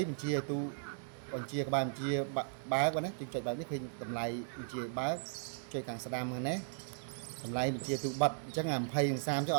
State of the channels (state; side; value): silent; left; digital silence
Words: បញ្ជាឲ្យទូបញ្ជាក្បាលបញ្ជាបើកណាចុចបើកនេះឃើញតម្លៃបញ្ជាបើកចុចខាងស្ដាំហ្នឹងណាតម្លៃបញ្ជាទូបិទអញ្ចឹងអា20និង30ចុះ